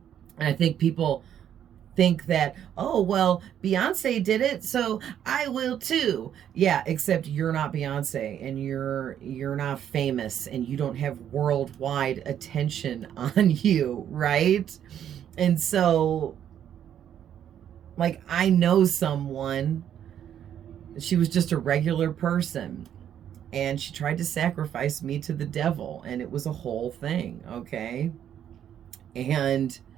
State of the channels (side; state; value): left; quieter; 9.8 dB